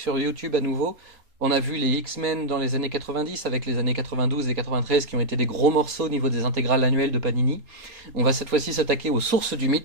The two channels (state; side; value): late; left; 3.7 ms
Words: YouTube à nouveau. On a vu les X-Men dans les années 90 avec les années 92 et 93 qui ont été des gros morceaux au niveau des intégrales annuelles de Panini. On va cette fois-ci s'attaquer aux sources du